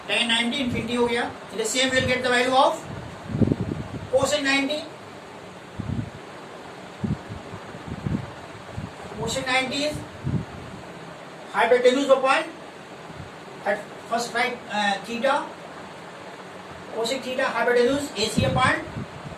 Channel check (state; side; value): identical; both; correlation 1.00